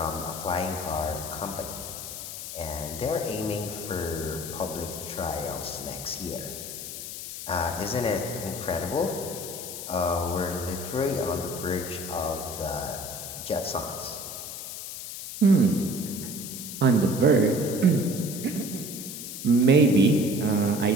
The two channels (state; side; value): noise; left; hiss, 8 dB below the sound